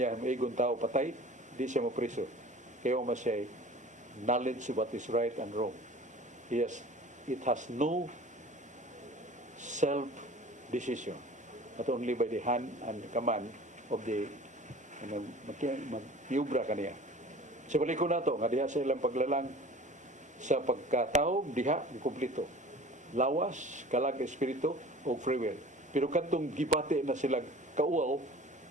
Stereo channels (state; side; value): normal; both; correlation 0.43